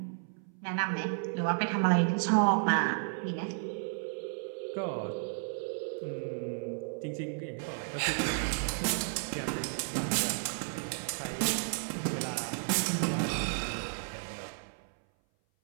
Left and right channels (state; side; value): silent; left; 56 dB below the other